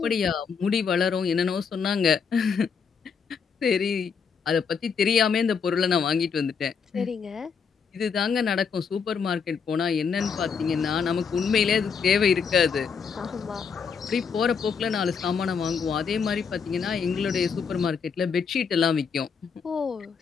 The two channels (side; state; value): right; quieter; 6.1 dB